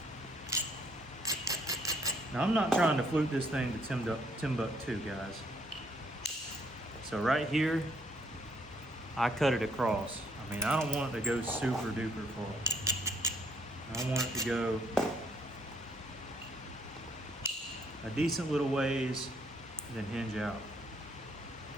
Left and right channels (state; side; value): normal; both; correlation 0.68